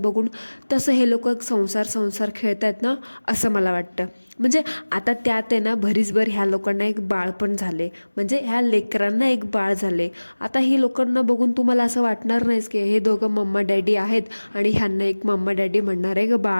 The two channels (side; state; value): both; inverted; correlation -1.00